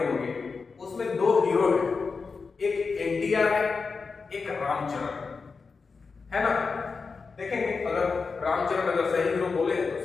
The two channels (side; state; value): right; quieter; 4.8 dB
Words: उसमें 2 हीरो है, एक NTR है, एक रामचरण है ना। देखेंगे अगर रामचरण अगर सही हीरो बोले तो